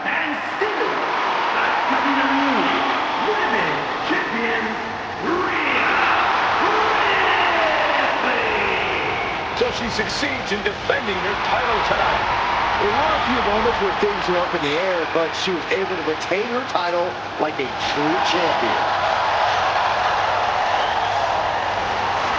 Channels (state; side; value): identical; both; correlation 1.00